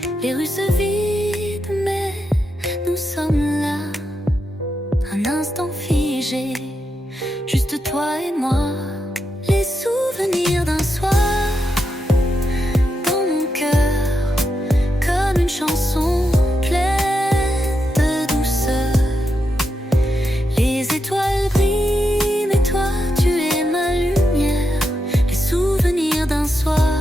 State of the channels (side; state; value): both; normal; correlation 0.85